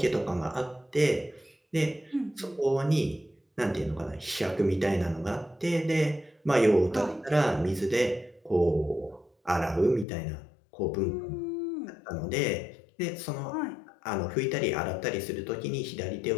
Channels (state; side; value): drops out; right; at 10.1 s